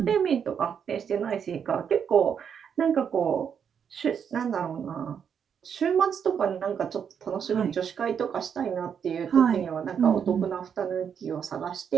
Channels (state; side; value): quieter; left; 7.6 dB